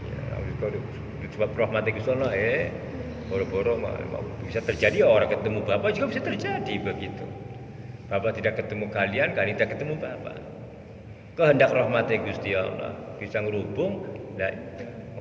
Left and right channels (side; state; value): both; identical; correlation 1.00